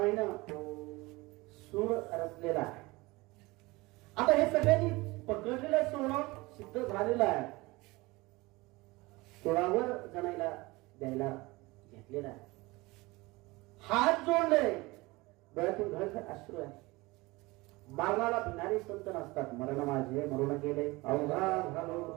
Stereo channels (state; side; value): quieter; left; 22.4 dB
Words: सूर रचलेला आहे. आता हे सगळ्यांनी पकडलेलं सोनं सिद्ध झालेलं आहे, सोळावर जणायला द्यायला घेतलेला आहे. हात जोडले, डोळ्यातून घळघळ अश्रू आहे. मरणाला भिणारे संत नसतात. मरण माझे मरून गेले अवघा झालो